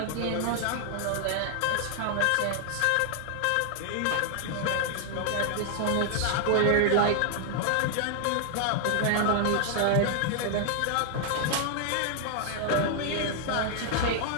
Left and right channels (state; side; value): different; both; correlation 0.00